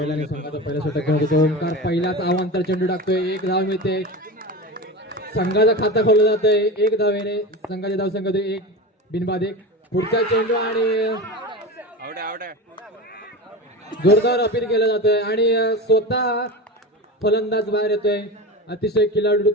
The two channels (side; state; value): both; normal; correlation 0.27